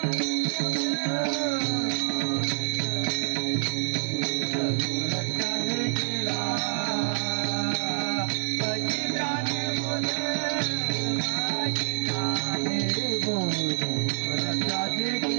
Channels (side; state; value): left; silent; digital silence